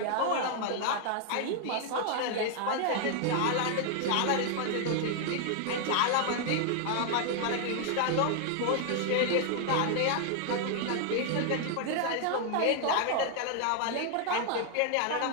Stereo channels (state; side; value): different; both; correlation 0.00